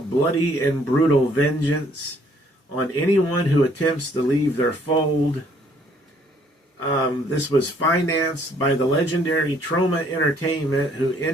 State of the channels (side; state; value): both; normal; correlation 0.63